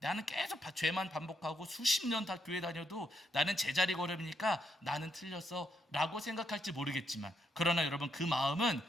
나는 계속 죄만 반복하고 수십 년 다 교회 다녀도 나는 제자리 걸음이니까 나는 틀렸어 라고 생각할지 모르겠지만, 그러나 여러분 그 마음은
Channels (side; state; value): both; normal; correlation 0.77